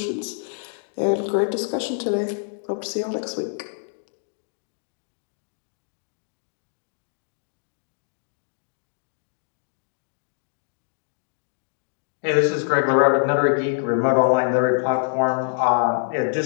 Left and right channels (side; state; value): right; silent; digital silence